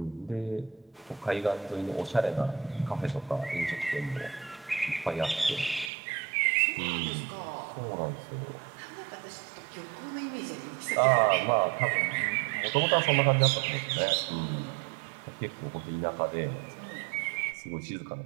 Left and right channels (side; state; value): left; drops out; at 5.9 s